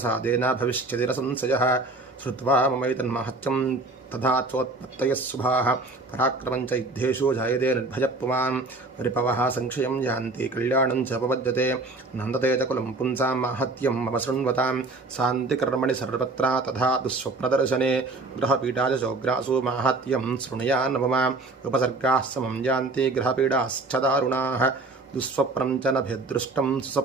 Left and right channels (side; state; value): left; quieter; 3.2 dB